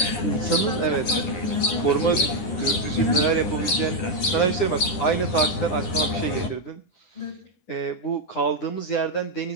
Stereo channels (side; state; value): right; late; 9.8 ms